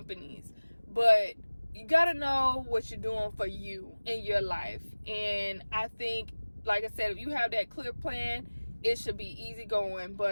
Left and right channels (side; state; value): both; inverted; correlation -1.00